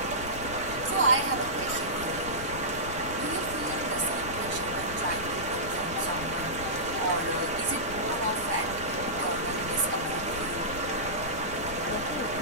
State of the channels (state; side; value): noise; left; rumble, 11 dB below the sound